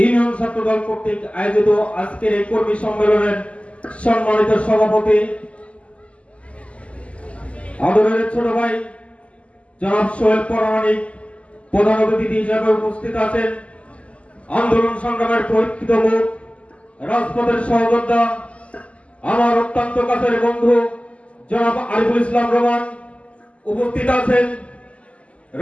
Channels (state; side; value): late; right; 0.062 ms